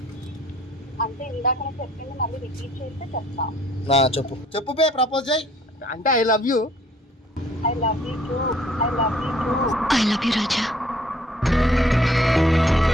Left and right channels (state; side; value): normal; both; correlation 0.59